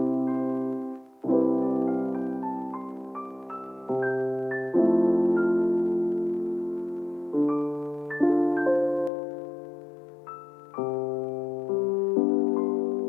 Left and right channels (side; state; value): right; drops out; at 9.1 s